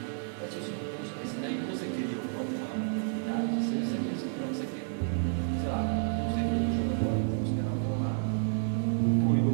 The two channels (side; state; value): left; silent; 57 dB below the other